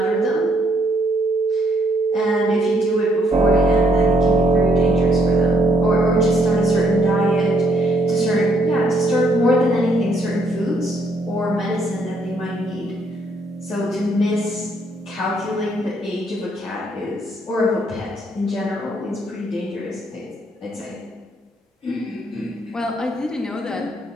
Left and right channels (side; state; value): both; normal; correlation 0.70